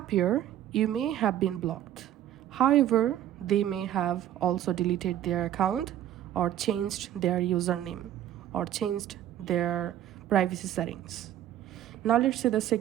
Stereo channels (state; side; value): quieter; left; 11.8 dB